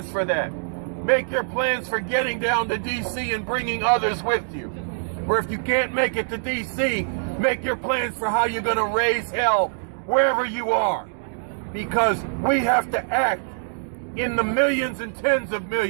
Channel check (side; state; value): left; silent; digital silence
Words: for that. Make your plans for getting down to D.C. and bringing others with you. Or if you can't make it to D.C., make your plans for how you're going to raise hell wherever you are. Because we have to act in the millions and tens of